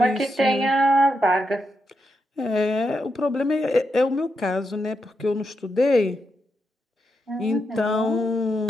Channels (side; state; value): both; normal; correlation 0.84